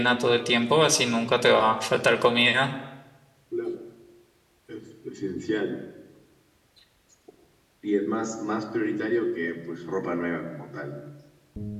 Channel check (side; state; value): both; identical; correlation 1.00